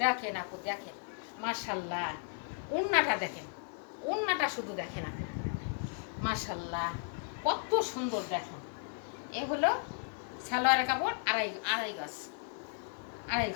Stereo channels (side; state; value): right; silent; 54 dB below the other